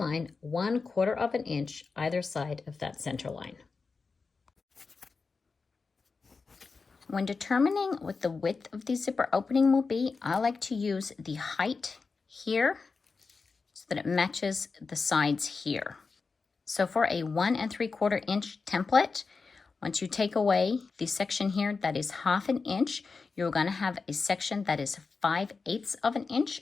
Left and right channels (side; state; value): right; quieter; 4.5 dB